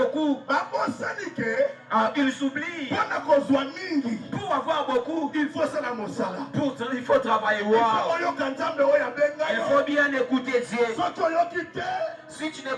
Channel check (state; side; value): identical; both; correlation 1.00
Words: Ils s'oublient. Pour avoir beaucoup, il faut travailler. Il faut bien écouter Dieu. Si tu